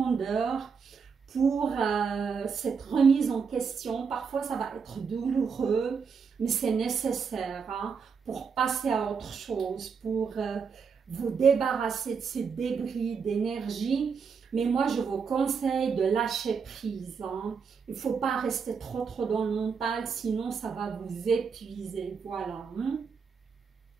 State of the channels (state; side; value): quieter; left; 5.9 dB